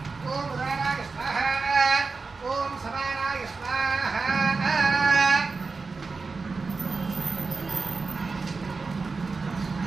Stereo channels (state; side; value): quieter; left; 4.3 dB